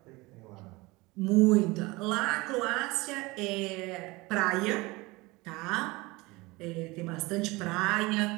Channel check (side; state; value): left; quieter; 22.7 dB